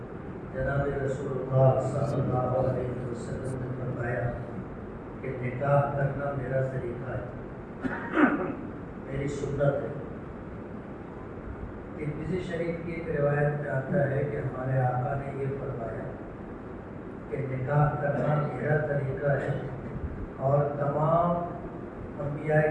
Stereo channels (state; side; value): identical; both; correlation 1.00